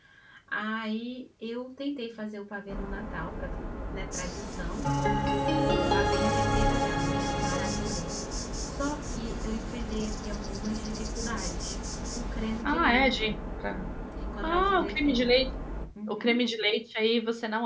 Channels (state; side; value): identical; both; correlation 1.00